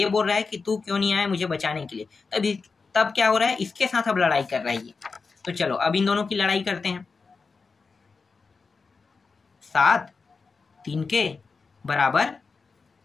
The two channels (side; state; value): right; quieter; 4.6 dB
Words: बोल रहा है कि तू क्यों नहीं आया मुझे बचाने के लिए। तब क्या हो रहा है, इसके साथ अब लड़ाई कर रहा है ये। तो चलो अब इन दोनों की लड़ाई करते हैं। 7 3k बराबर,